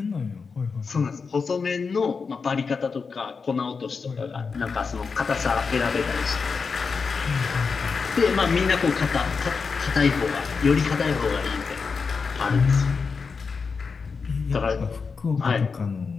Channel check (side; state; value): right; quieter; 5.1 dB